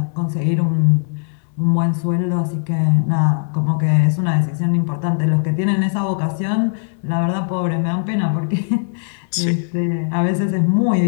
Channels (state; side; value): silent; right; digital silence